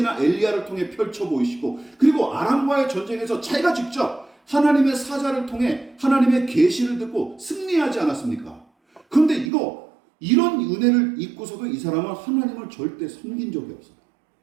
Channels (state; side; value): drops out; left; at 9.5 s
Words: 엘리야를 통해 펼쳐 보이시고, 그리고 아람과의 전쟁에서 자기가 직접 하나님의 사자를 통해 하나님의 계시를 듣고 승리하지 않았습니까? 그런데 이런 은혜를 잊고서도 이 사람은 하나님을 절대 섬긴 적이 없어요.